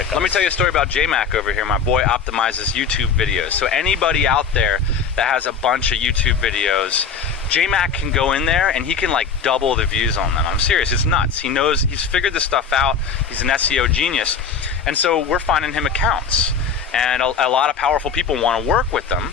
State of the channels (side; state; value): right; quieter; 5.9 dB